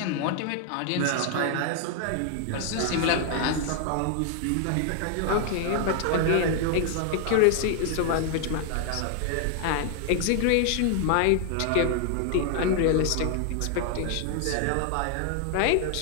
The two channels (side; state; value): both; different; correlation 0.00